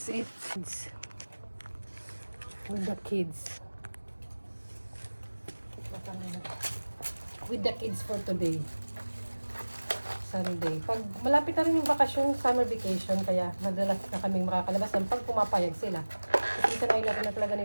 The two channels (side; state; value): both; inverted; correlation -1.00